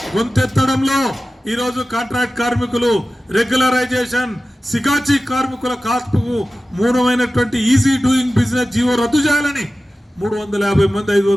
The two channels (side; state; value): both; normal; correlation 0.95